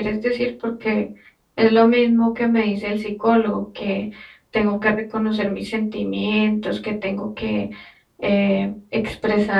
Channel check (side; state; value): both; identical; correlation 1.00